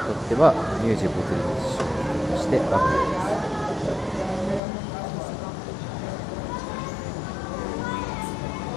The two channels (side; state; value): right; drops out; at 4.6 s